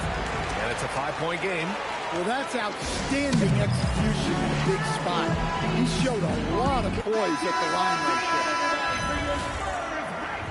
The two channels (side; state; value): both; identical; correlation 1.00